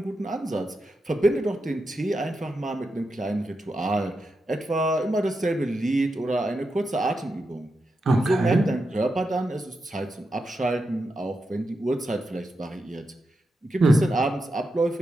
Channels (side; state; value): both; normal; correlation 0.87